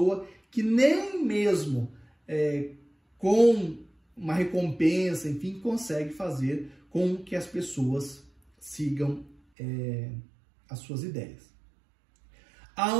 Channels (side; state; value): left; drops out; at 9.3 s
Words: que nem mesmo com uma recompensa, enfim, consegue fazer com que as pessoas sigam as suas ideias.